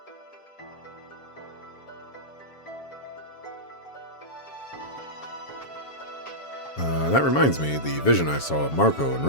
That reminds me, the vision I saw of Marco and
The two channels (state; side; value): late; right; 7.2 ms